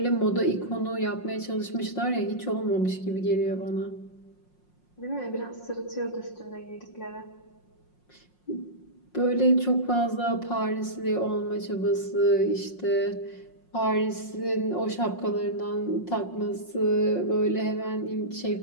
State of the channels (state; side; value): late; right; 5.5 ms